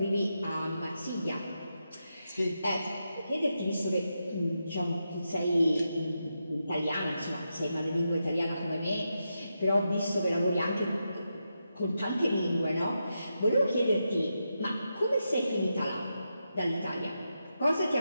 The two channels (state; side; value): inverted; both; correlation -0.87